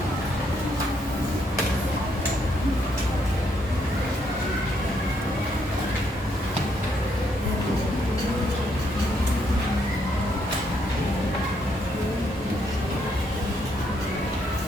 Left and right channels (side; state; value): both; normal; correlation 0.74